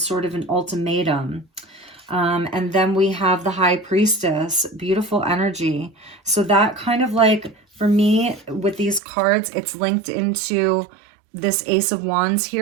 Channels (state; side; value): drops out; left; at 9.0 s